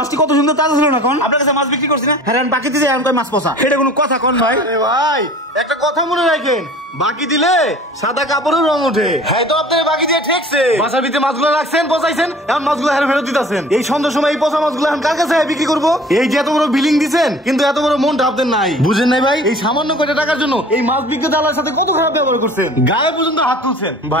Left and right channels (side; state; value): both; normal; correlation 0.46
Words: কত সুন্দর তাজা ছিল না কোন? আপনার কাছে মাছ বিক্রি করছি না? হ্যাঁ বাকি দিতে আমি কই মাছ পচা, এটা কোনো কথা কোন ভাই? আরে ভাই একটা কথা মনে রাখেন, বাকি দিলে সাদা কাপড়ের রং ওঠে। হ্যাঁ তো আপনার বাকি দিয়ে ঠেকছে, বাসার ভিতরে মাছগুলো রাখছেন, পচাইছেন, এখন মাছগুলো হেরে ফেরত দিতেছেন। এই সন্ধ্যার সময় এই পচা মাছগুলো এখন কার কাছে বিক্রি করবো? এই যে এত বড় বিলিং দিচ্ছেন, কিন্তু এত বড় মনটা আপনাদের নাই, বুঝেন নাই ভাই? এই সামান্য কয়টা টাকার জন্য এই মাছ বিক্রেতার সাথে কত খারাপ ব্যবহার করছেন, গায়ে পর্যন্ত হাত তুলছেন।